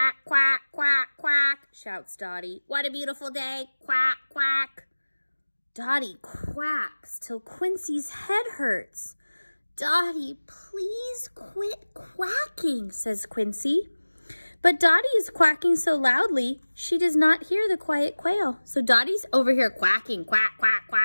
quack, quack, quack, shouts Dottie. What a beautiful day. Quack, quack. Dottie quacks till Quincy's head hurts. Dottie, please quit quacking, says Quincy. But Dottie is quacking so loudly, she does not hear the quiet quail. So Dottie's over here quacking, quack, quack,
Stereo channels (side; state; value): both; inverted; correlation -1.00